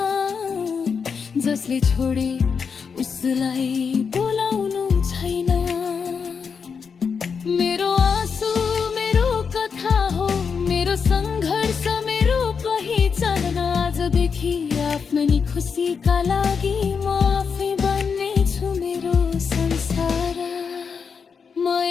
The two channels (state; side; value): quieter; right; 6.0 dB